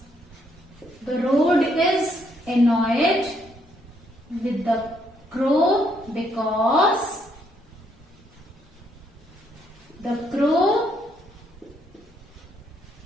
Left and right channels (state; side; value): normal; both; correlation 0.72